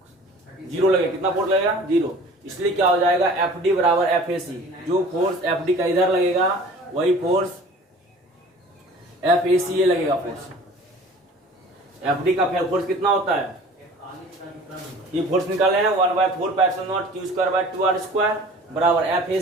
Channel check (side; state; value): both; normal; correlation 0.46